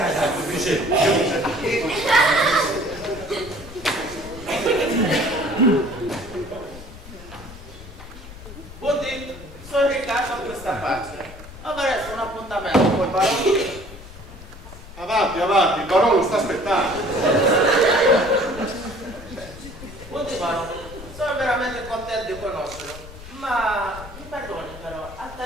Buondì, sono Riccardo a questa parte. Avrei un appuntamento col barone. Avanti, avanti, il barone lo sta aspettando. Buondì barone, sono veramente contento di conoscerlo. Ma mi perdoni però, al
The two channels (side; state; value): left; noise; rumble, 15 dB below the sound